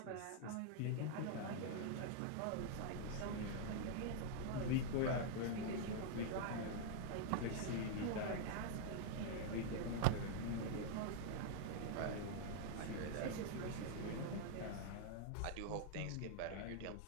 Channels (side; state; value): both; different; correlation 0.00